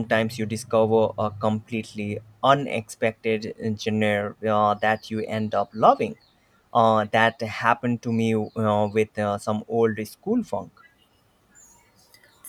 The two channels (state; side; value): identical; both; correlation 1.00